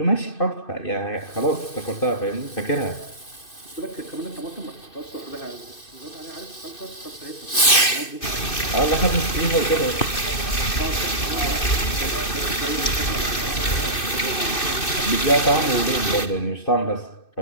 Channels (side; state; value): right; late; 2.6 ms